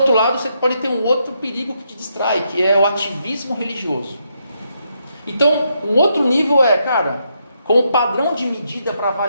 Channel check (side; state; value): both; inverted; correlation -0.79